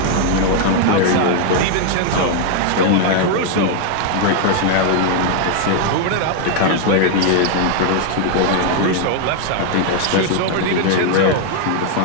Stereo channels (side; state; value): both; different; correlation 0.00